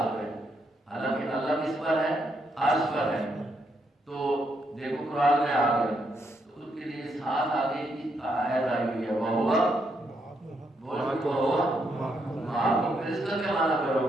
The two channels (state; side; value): normal; both; correlation 0.78